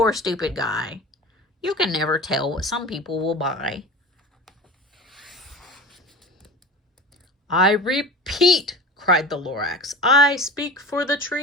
stupid guy. You can never tell what some people will buy. I repeat, cried the Lorax, I speak for the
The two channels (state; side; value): normal; both; correlation 0.34